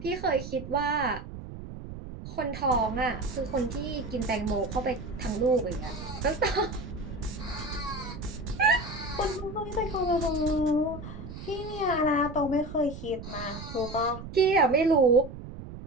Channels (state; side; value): noise; right; rumble, 11 dB below the sound